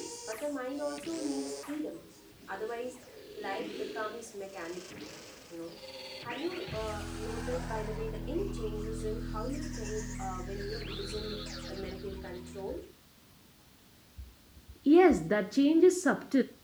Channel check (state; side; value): identical; both; correlation 1.00